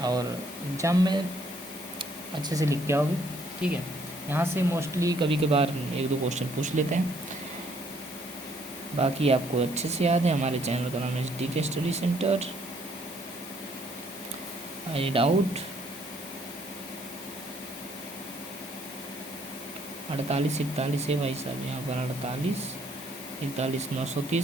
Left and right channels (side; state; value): both; normal; correlation 0.66